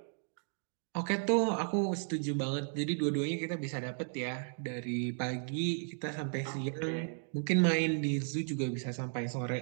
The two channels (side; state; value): left; silent; 55 dB below the other